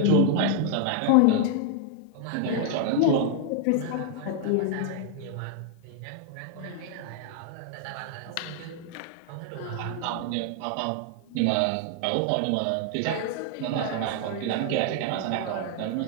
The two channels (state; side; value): different; both; correlation 0.00